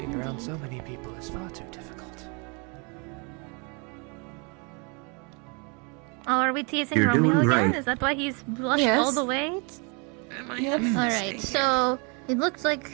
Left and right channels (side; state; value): left; quieter; 33.3 dB